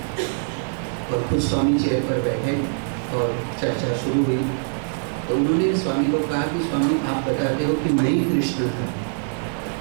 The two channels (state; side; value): silent; left; digital silence